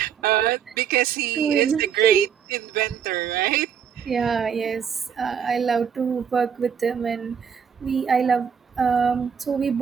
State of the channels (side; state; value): left; quieter; 7.7 dB